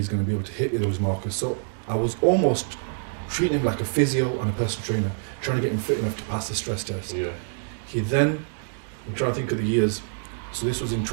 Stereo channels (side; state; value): left; silent; digital silence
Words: going to be able to hit those markers. So I was almost treating him like a physio and a personal trainer, trying to get him fit enough to pass the stress test. Yeah. He then, I'm trying to think of the years, so this was in